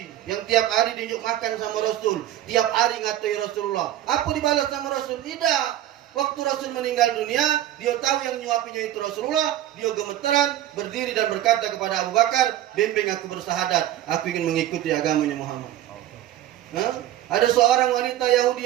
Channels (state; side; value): quieter; left; 12.9 dB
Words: yang tiap hari diunjuk makan sama Rasul, tiap hari ngatai Rasulullah. Apa dibalas sama Rasul? Tidak. Waktu Rasul meninggal dunia, dia tahu yang nyuapinya itu Rasulullah. Dia gemeteran, berdiri dan berkata kepada Abu Bakar, bimbing aku bersahadat, aku ingin mengikuti agamanya Muhammad. Ada seorang wanita